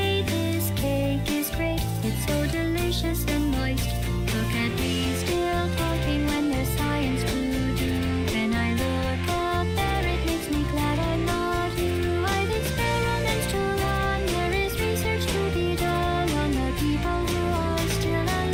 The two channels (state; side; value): identical; both; correlation 1.00